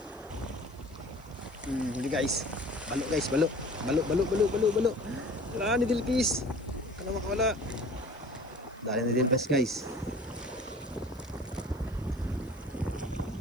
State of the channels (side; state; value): left; noise; hiss, 28 dB below the sound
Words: Huli guys. Balo guys, balo. Balo. Wala ni Dilpis. Kana makawala. Dali ni Dilpis guys.